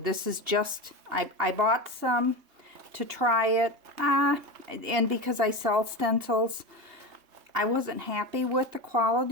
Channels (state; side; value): late; left; 2.8 ms